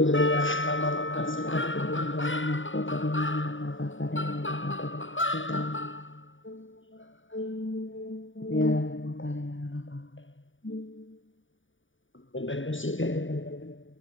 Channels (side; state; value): right; late; 0.57 ms